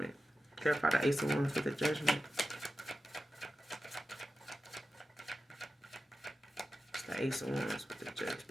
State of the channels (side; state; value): both; normal; correlation 0.91